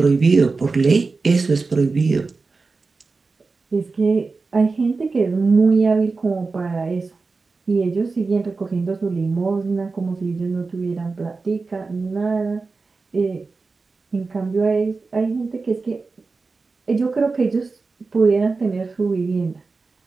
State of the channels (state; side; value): quieter; left; 4.1 dB